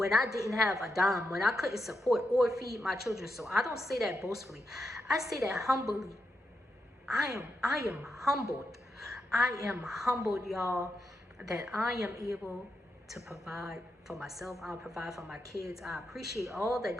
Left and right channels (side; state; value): both; normal; correlation 0.85